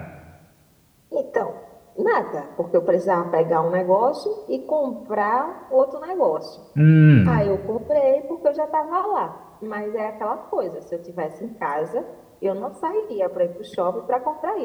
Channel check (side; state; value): both; identical; correlation 1.00